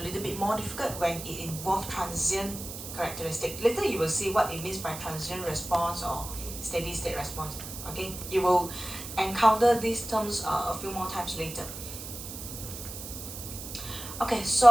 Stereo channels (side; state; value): right; noise; hiss, 10 dB below the sound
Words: little bit more difficult when it involves transient characteristic. Later you will see what it means by transient response or steady state response. Okay, you will encounter these terms a few more times later. Okay,